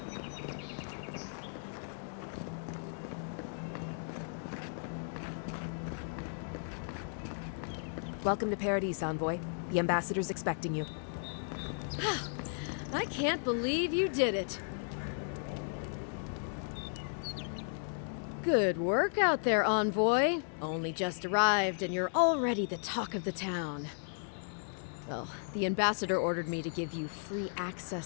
Welcome to Paradise, Envoy. The ambassador's expecting you. I can't believe you did it. Good work out there, Envoy. Only just arrived and you're already the talk of the town. Well, the ambassador ordered me to give you free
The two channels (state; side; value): silent; right; digital silence